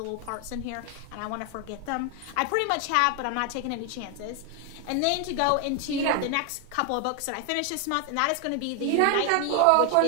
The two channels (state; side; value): different; both; correlation 0.00